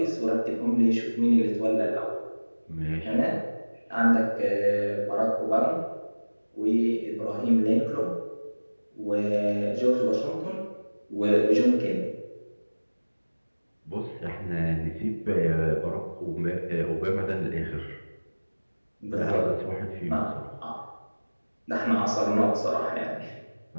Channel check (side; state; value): both; inverted; correlation -1.00